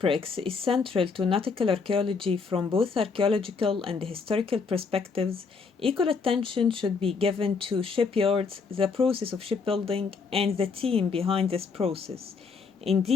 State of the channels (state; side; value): quieter; right; 5.0 dB